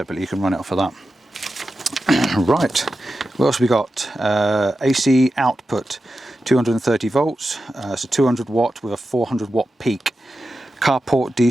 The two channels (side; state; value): both; normal; correlation 0.91